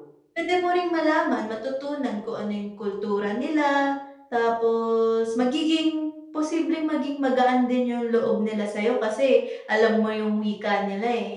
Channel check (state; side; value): identical; both; correlation 1.00